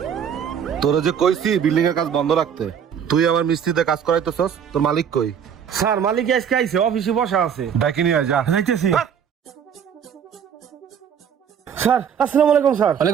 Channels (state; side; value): quieter; left; 8.0 dB